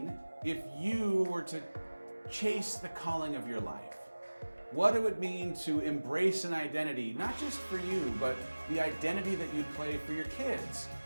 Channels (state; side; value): inverted; both; correlation -1.00